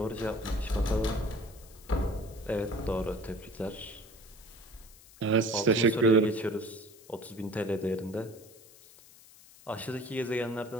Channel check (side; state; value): left; noise; hiss, 22 dB below the sound